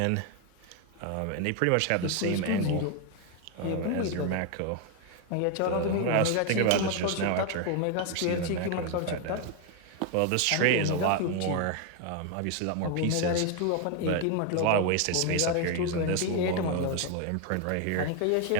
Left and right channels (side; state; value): both; different; correlation 0.01